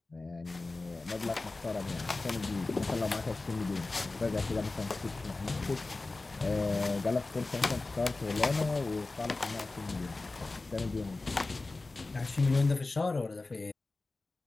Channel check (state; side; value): quieter; right; 3.4 dB